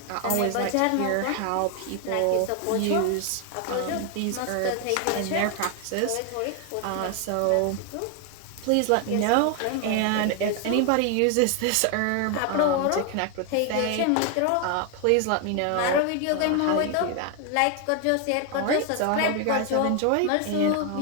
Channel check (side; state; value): both; different; correlation 0.01